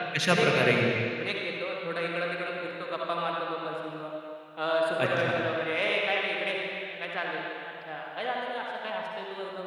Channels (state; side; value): identical; both; correlation 1.00